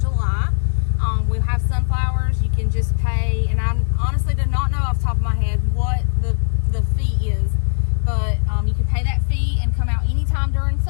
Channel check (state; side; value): silent; right; digital silence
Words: July. We'll have sunflowers. You can just pay, and I honestly did not know off the top of my head what the fee is, but you can pay that fee and come out anytime during